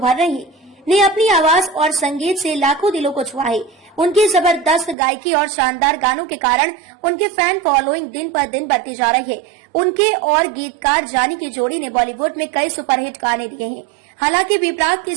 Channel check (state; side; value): drops out; left; at 5.0 s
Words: रही है, ने अपनी आवाज और संगीत से लाखों दिलों को छुआ है। उनकी जबरदस्त गायकी और शानदार गानों के कारण उनके फैन फॉलोइंग दिन पर दिन बढ़ती जा रही है। उनके और गीतकार जानी की जोड़ी ने बॉलीवुड में कई सुपरहिट गाने दिए हैं। हालांकि बी प्राक की